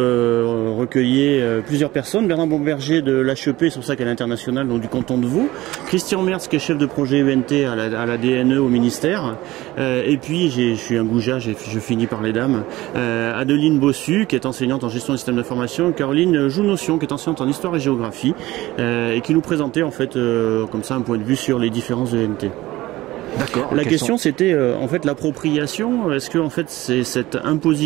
plusieurs personnes. Bernard Bomberger de l'HEP, c'est pour ça qu'elle est internationale, donc du canton de Vaud. Christian Mertz, qui est chef de projet ENT à la DNE au ministère. Et puis, je suis un goujat, je finis par les dames. Adeline Bossu, qui est enseignante en gestion des systèmes d'information. Caroline Jounotion, qui est enseignante en histoire et géographie. Et qui nous présentait en fait comme ça un point de vue sur les différences de ENT. D'accord. La question c'était en fait l'appropriation. Est-ce que en fait c'est cette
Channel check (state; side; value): quieter; left; 17.7 dB